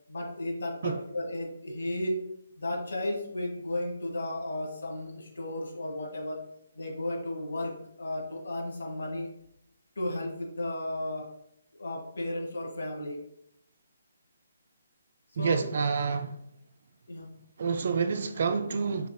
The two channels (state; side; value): inverted; both; correlation -0.82